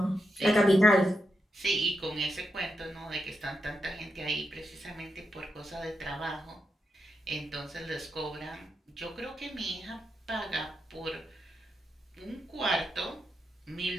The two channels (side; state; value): both; normal; correlation 0.85